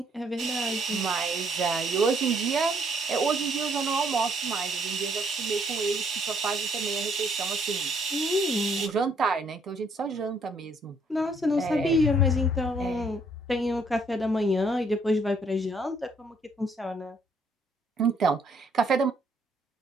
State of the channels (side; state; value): both; normal; correlation 0.67